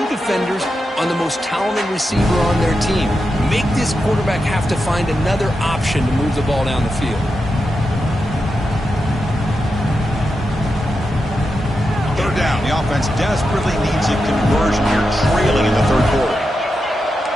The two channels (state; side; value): normal; both; correlation 0.88